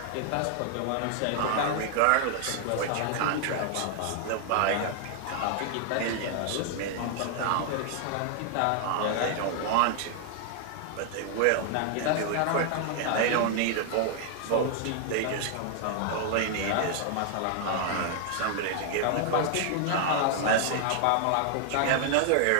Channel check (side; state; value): both; different; correlation 0.00